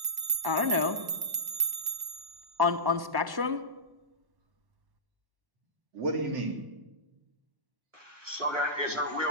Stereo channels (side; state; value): left; late; 1.1 ms